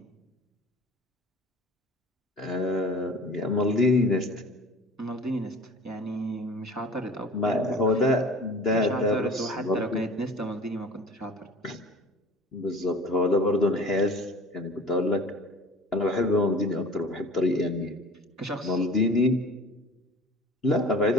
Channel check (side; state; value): both; normal; correlation 0.43